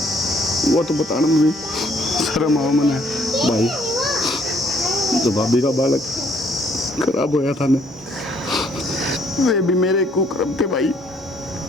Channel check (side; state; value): both; normal; correlation 0.65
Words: वो तो बताने में भी शर्म आओ मैंने भाई। जो भाभी का बालक खराब होया था ना, वे भी मेरे कुकर्म थे भाई।